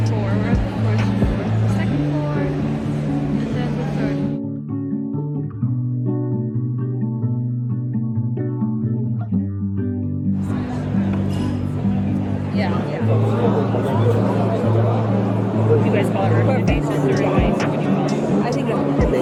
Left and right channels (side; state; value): both; identical; correlation 1.00